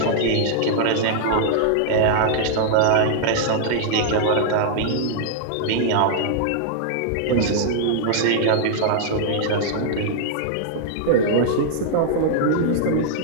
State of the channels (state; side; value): different; both; correlation -0.01